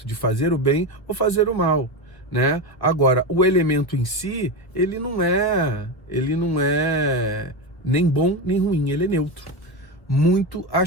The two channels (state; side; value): late; right; 1.3 ms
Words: de fazer o bem ou fazer o mal, né? Agora, o elemento em si, ele não é nem bom nem ruim, ele é neutro. Muito